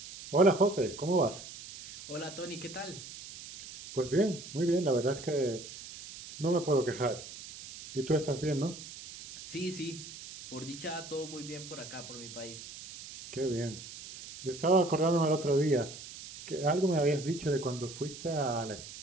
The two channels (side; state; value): right; noise; hiss, 13 dB below the sound